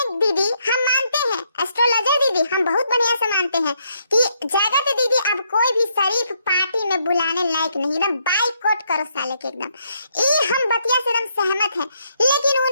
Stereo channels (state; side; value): inverted; both; correlation -0.74